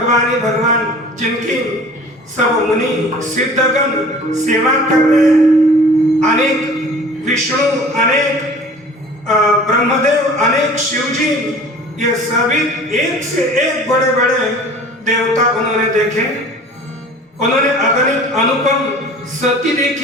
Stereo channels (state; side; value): normal; both; correlation 0.45